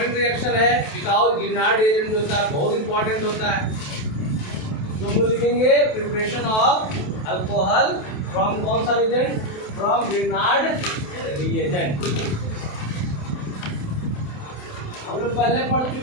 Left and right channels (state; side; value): late; right; 28 ms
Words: रिएक्शन है बिकॉज ग्रिनार्ड रिएजेंट जो होता है बहुत इंपॉर्टेंट होता है। तो हम लोग लिखेंगे प्रिपरेशन ऑफ अल्कोहल फ्रॉम कौन सा रिएजेंट, फ्रॉम ग्रिनार्ड रिएजेंट। हम लोग पहले पढ़